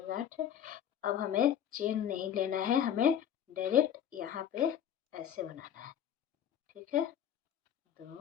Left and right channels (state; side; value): quieter; right; 9.6 dB